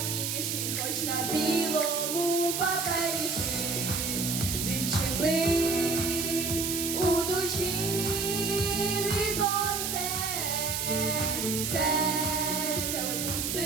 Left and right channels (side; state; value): right; noise; hiss, 1 dB below the sound